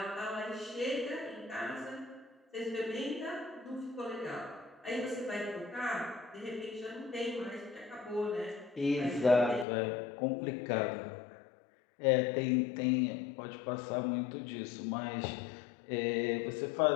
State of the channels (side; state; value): right; drops out; at 9.7 s